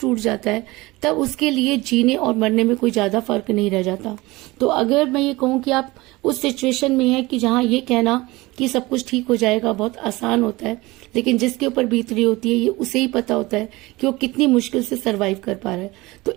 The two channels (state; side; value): quieter; left; 21.2 dB